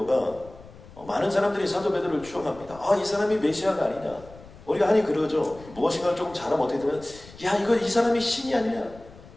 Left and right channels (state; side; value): noise; left; rumble, 20 dB below the sound